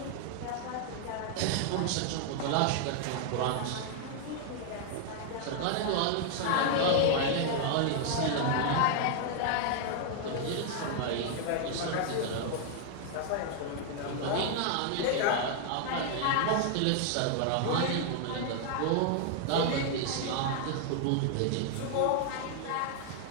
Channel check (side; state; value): both; different; correlation 0.00